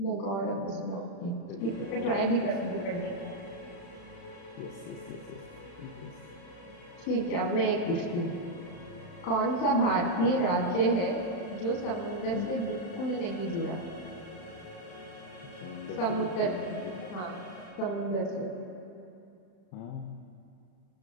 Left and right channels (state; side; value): late; right; 36 ms